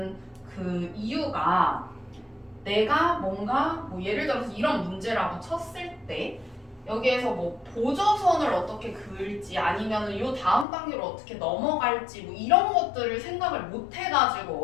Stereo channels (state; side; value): drops out; right; at 10.7 s